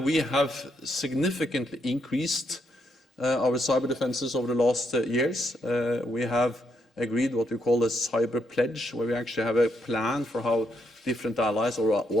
we have significantly increased our cyber defences over the last years. We have agreed what we call a cyber pledge, where we actually have a plan for how different allies, or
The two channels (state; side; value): normal; both; correlation 0.77